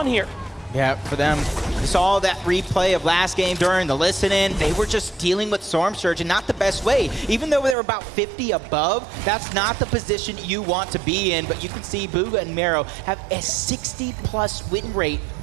here. Yeah, for them, we saw that replay of last game during the listen-in. They were just dealing with Storm Surge and not the best way. Even though they were about 50 above, that's not the position you want to be in. But you can see Booga and Mero have a 60-plus win rate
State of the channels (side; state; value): left; drops out; at 7.8 s